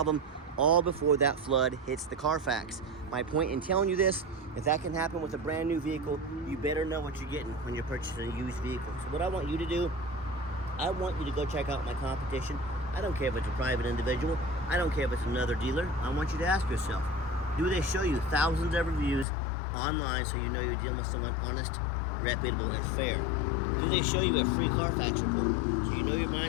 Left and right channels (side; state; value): right; drops out; at 19.2 s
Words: all before that flood hits the Carfax. My point in telling you this, if that can happen with a brand new vehicle, you better know what you're getting when you're purchasing a used vehicle. So what I want you to do, I want you to go check out my competition. I don't care if it's a private individual. I don't care if it's another dealer. I want you to ask yourself, do they show you thousands of reviews online so you know you're dealing with someone honest, reputable, and fair? Do they show you a free Carfax report so you know you're